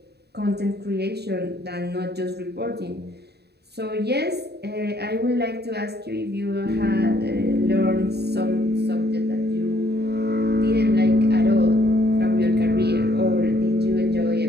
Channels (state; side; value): late; left; 0.48 ms